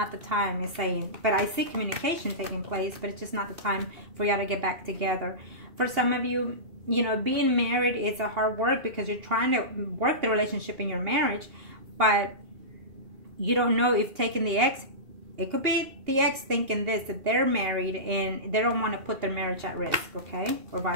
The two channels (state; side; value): late; left; 2.8 ms